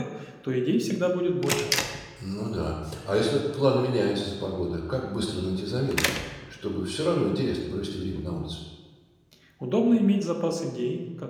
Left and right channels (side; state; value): both; identical; correlation 1.00